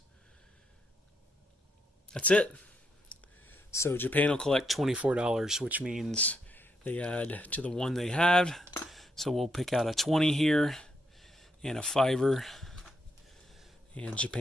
That's it. So Japan will collect $24, which means they add to the one they had. So we'll pick out a 20 here and a 5-er. And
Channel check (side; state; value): both; normal; correlation 0.78